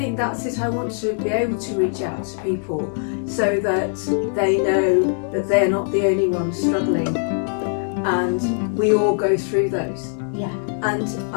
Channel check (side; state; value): right; silent; 62 dB below the other